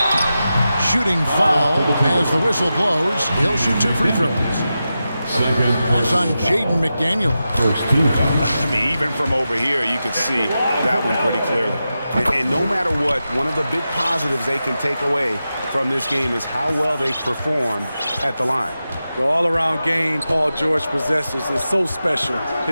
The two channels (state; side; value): inverted; both; correlation -0.91